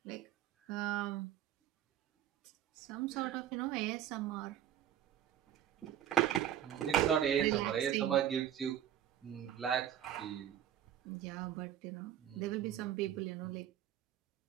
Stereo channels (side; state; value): left; quieter; 10.9 dB